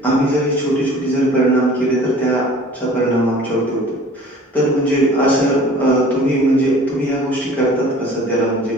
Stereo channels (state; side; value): normal; both; correlation 0.47